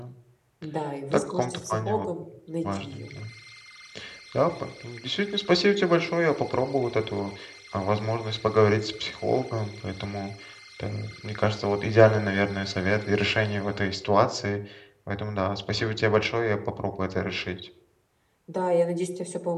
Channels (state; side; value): identical; both; correlation 1.00